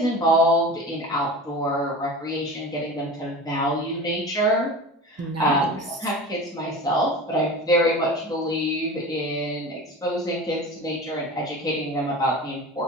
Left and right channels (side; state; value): both; normal; correlation 0.33